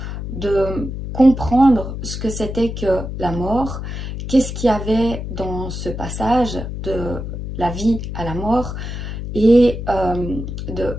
de comprendre ce que c'était que la mort, qu'est-ce qu'il y avait dans ce passage de la vie à la mort et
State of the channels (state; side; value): noise; left; hum, 6 dB below the sound